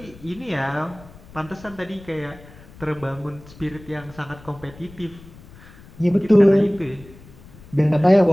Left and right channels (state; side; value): noise; left; rumble, 21 dB below the sound